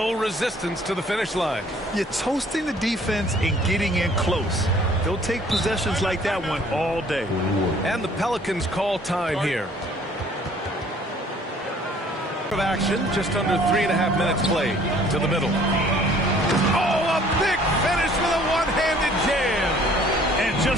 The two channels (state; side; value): normal; both; correlation 0.56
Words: resistance to the finish line. You're toasting the defense and getting in close. They'll take possessions like that one all day. And the Pelicans call time here. Of action, just under 3.5 minutes played. To the middle. Oh, a big finish with a one-handed jam. And